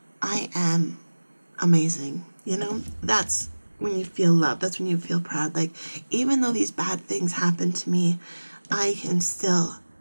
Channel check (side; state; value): both; inverted; correlation -1.00